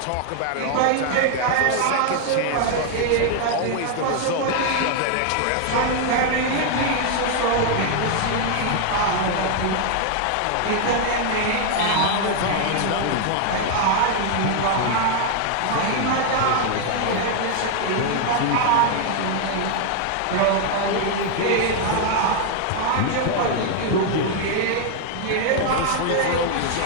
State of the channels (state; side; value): different; both; correlation 0.00